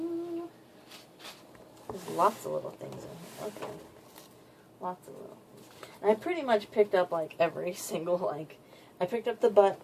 There's lots of little things in here. Okay. Lots of little things. And I pretty much picked up like every single like I picked up the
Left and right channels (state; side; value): identical; both; correlation 1.00